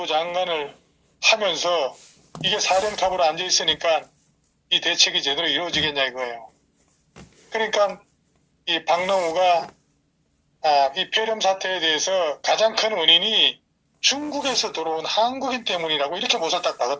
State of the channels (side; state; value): both; identical; correlation 1.00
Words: 장관을 하면서 이게 사령탑으로 앉아 있으니까 이 대책이 제대로 이루어지겠냐 이거예요. 그러니까 이 박능우가 이 폐렴 사태에 대해서 가장 큰 원인이 중국에서 들어온 한국인 때문이라고 이렇게 못을 딱